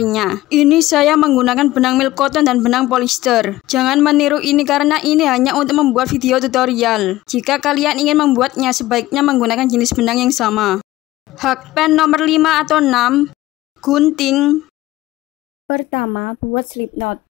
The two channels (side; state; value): right; quieter; 16.8 dB